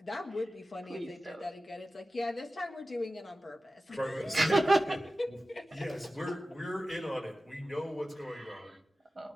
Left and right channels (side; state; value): both; normal; correlation 0.95